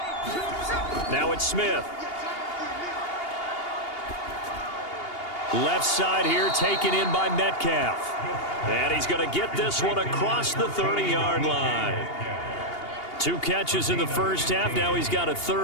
Now it's Smith. Left side here taken in by Metcalf. And he's going to get this one across the 30-yard line. 2 catches in the first half. Now he's got a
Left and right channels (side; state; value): right; late; 2.8 ms